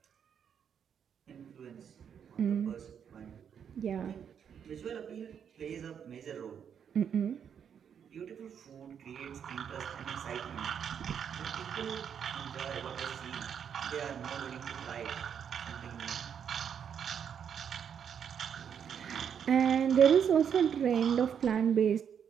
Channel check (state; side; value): quieter; left; 7.9 dB